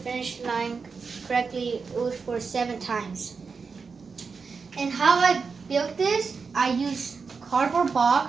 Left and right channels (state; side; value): quieter; left; 5.1 dB